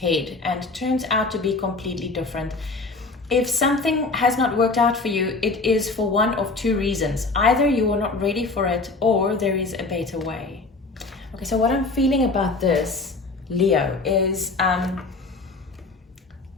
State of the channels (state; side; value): quieter; right; 3.6 dB